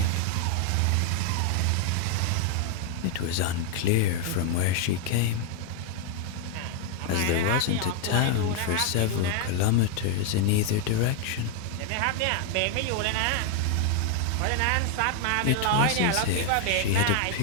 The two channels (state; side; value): different; both; correlation 0.00